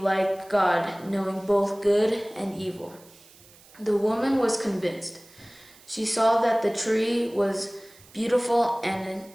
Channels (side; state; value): right; noise; hiss, 25 dB below the sound